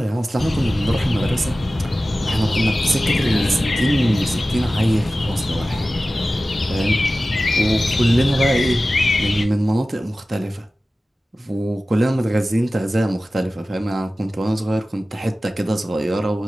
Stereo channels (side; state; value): both; normal; correlation 0.96